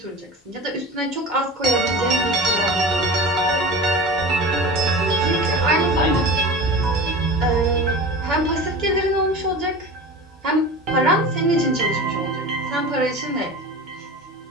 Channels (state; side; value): normal; both; correlation 0.32